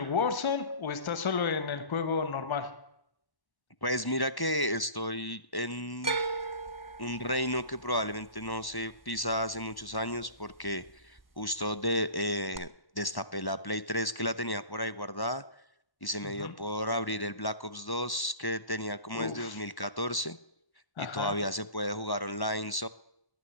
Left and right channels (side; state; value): right; late; 1.1 ms